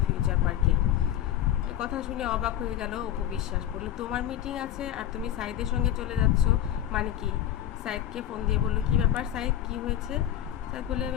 ফিউচার পার্কে। এই কথা শুনে অবাক হয়ে গেল অপু বিশ্বাস, বলল তোমার মিটিং আছে আর তুমি সাইদের সঙ্গে চলে যাচ্ছ, মানে কি? সাইদকে ফোন দিয়ে বলল, কি ব্যাপার সাইদ, কি হয়েছে? সাইদ বলে,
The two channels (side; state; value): right; quieter; 11.6 dB